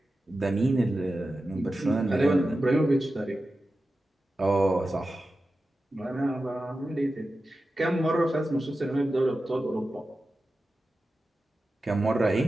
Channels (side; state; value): both; normal; correlation 0.93